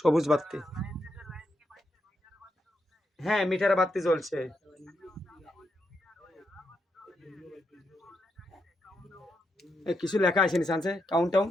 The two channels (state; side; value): normal; both; correlation 0.82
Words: বাতি হ্যাঁ মিটার বাতি জ্বলছে কিছু লেখা আছে নিচে কাউন্ট ডাউন